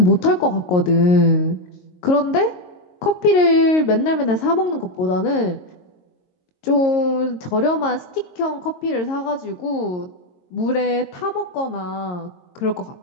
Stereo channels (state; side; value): late; right; 22 ms